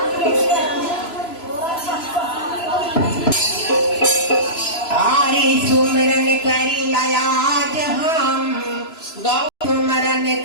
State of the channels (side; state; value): right; late; 3.0 ms